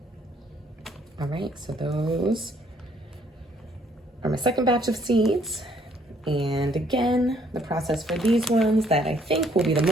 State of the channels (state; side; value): normal; both; correlation 0.65